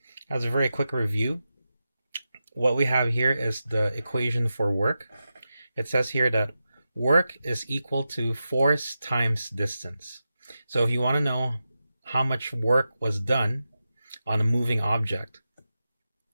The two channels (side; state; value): both; inverted; correlation -0.91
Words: very quick review, what we have here is the equation for work. It says here that work is equal to force times distance. So if you want to know how much work was done on a moving object,